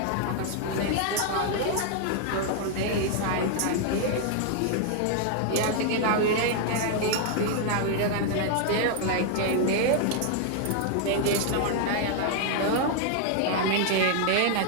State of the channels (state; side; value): different; both; correlation 0.00